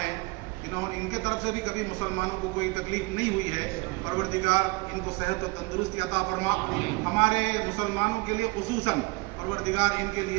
हैं, इनके तरफ से भी कभी मुसलमानों को कोई तकलीफ नहीं हुई है। परवरदिगार इनको सेहत और तंदुरुस्ती अता फरमा। हमारे मुसलमानों के लिए खुसूसन परवरदिगार इनके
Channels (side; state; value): left; quieter; 26.3 dB